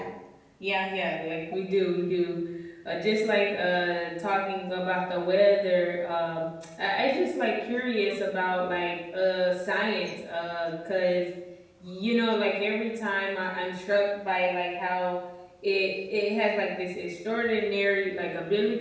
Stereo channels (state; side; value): identical; both; correlation 1.00